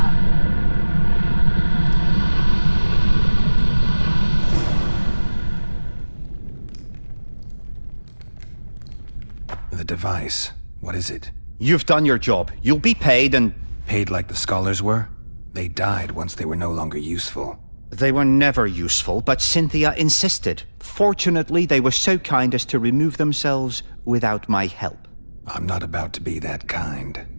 The device. What is it? You've done your job. You'll be paid and... Paid like the scholars were? They died once they were no longer useful. They were never useful, but Cynthia insisted. Fortunately, they were so kind as to remove themselves without my help. I'm not about to be that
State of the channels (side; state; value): both; inverted; correlation -1.00